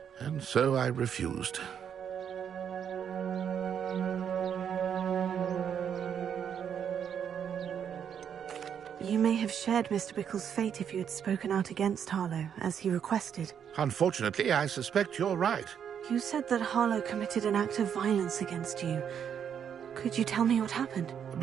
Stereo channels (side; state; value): left; quieter; 8.2 dB